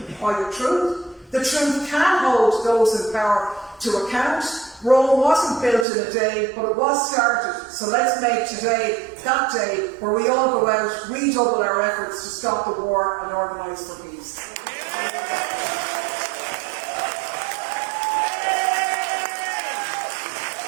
by the truth. The truth can hold those in power to account. Rome wasn't built in a day, but it was started. So let's make today that day where we all go out, redouble our efforts to stop the war and organise for peace.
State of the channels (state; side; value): drops out; left; at 5.9 s